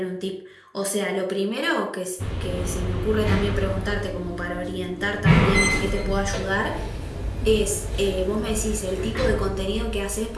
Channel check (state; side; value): identical; both; correlation 1.00